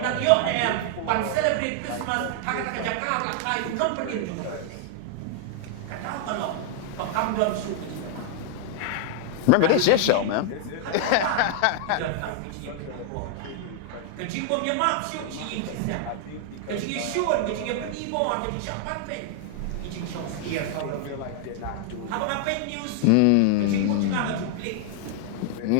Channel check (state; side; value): different; both; correlation 0.00